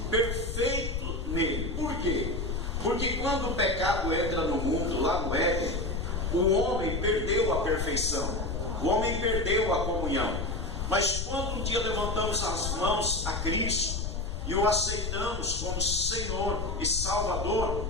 perfeito nele. Por quê? Porque quando o pecado entra no mundo, lá no Éden, o homem perdeu a perfeição, o homem perdeu a comunhão. Mas quando um dia levantamos as mãos a Cristo e o aceitamos como Senhor e Salvador,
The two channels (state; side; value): noise; left; rumble, 3 dB below the sound